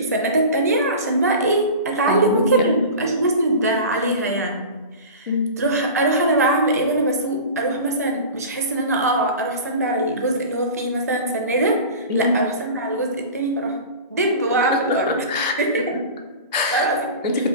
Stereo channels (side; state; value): both; inverted; correlation -0.34